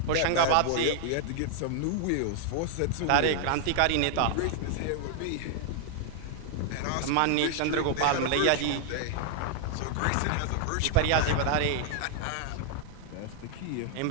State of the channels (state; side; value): different; both; correlation 0.00